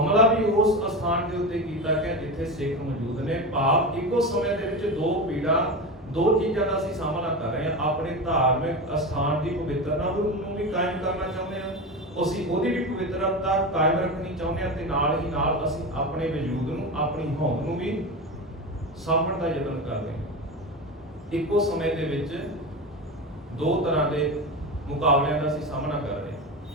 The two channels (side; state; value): both; normal; correlation 0.22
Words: ਵੀ ਉਸ ਅਸਥਾਨ ਦੇ ਉੱਤੇ ਕੀਤਾ ਗਿਆ ਜਿੱਥੇ ਸਿੱਖ ਮੌਜੂਦ ਨੇ। ਭਾਵ ਇੱਕੋ ਸਮੇਂ ਦੇ ਵਿੱਚ ਦੋ ਪੀੜਾਂ, ਦੋ ਚੀਜ਼ਾਂ ਦਾ ਅਸੀਂ ਸਾਹਮਣਾ ਕਰ ਰਹੇ ਹਾਂ। ਆਪਣੇ ਧਾਰਮਿਕ ਅਸਥਾਨ ਦੀ ਪਵਿੱਤਰਤਾ ਨੂੰ ਵੀ ਕਾਇਮ ਕਰਨਾ ਚਾਹੁੰਦੇ ਹਾਂ, ਅਸੀਂ ਉਹਦੀ ਵੀ ਪਵਿੱਤਰਤਾ ਕਾਇਮ ਰੱਖਣੀ ਚਾਹੁੰਦੇ ਹਾਂ, ਤੇ ਨਾਲ ਹੀ ਨਾਲ ਅਸੀਂ ਆਪਣੇ ਵਜੂਦ ਨੂੰ, ਆਪਣੀ ਹੋਂਦ ਨੂੰ ਵੀ ਸਾਂਭਣ ਦਾ ਯਤਨ ਕਰਦੇ ਹਾਂ। ਇੱਕੋ ਸਮੇਂ ਦੇ ਵਿੱਚ ਦੋ ਤਰ੍ਹਾਂ ਦੇ ਮੁਕਾਬਲਿਆਂ ਦਾ ਅਸੀਂ ਸਾਹਮਣਾ ਕਰ ਰਹੇ ਹਾਂ।